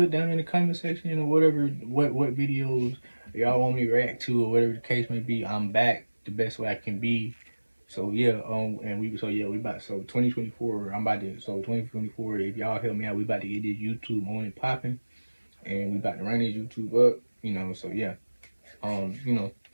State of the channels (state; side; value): inverted; both; correlation -1.00